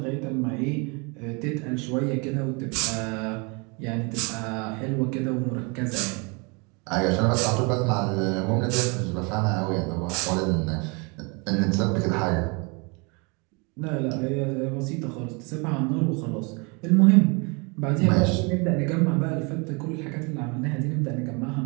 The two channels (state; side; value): quieter; left; 31.0 dB